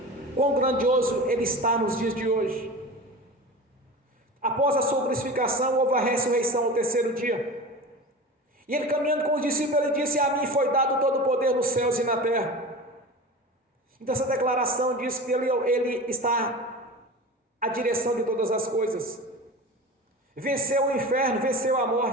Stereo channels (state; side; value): normal; both; correlation 0.31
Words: quão grandioso Ele está nos dias de hoje. Após a sua crucificação, houve a ressurreição ao terceiro dia. E ele caminhando com os discípulos, ele disse: a mim foi dado todo o poder nos céus e na terra. Então essa declaração diz que ele está à direção de todas as coisas. Venceu o inferno, venceu a